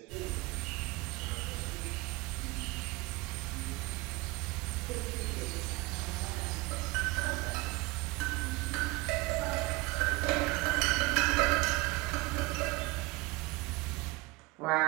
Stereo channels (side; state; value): left; quieter; 22.7 dB